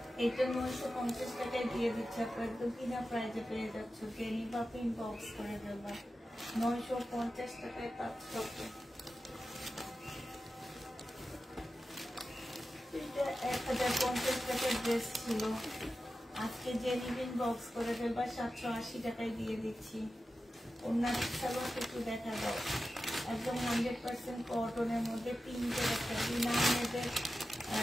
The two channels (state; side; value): normal; both; correlation 0.93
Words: এটা 950 টাকায় দিয়ে দিচ্ছে আপু, একদম কিনা প্রাইজে পেয়ে যাচ্ছ। জেনিভা ইনবক্স করে দেবা। 950 টাকায় পাচ্ছ। এটা 1050 টাকার ড্রেস ছিল, আজকে জেনিভা ইনবক্স করে দেবা। 780 টাকায় দিয়ে দিচ্ছি। অন্যান্য সালোয়ার একটু দেখা দাও, একদম 100% কটনের মধ্যে পিঙ্কের একটা বিনামেদের